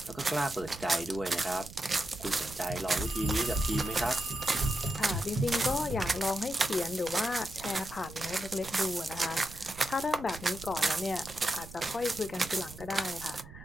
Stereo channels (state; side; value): noise; right; rumble, 15 dB below the sound